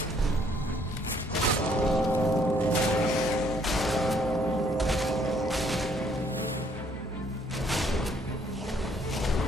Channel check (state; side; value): normal; both; correlation 0.65